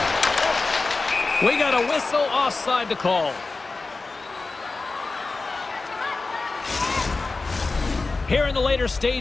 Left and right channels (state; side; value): quieter; right; 3.7 dB